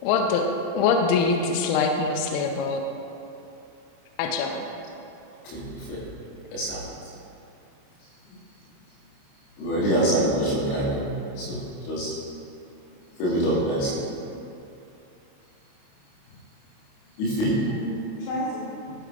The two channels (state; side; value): late; right; 28 ms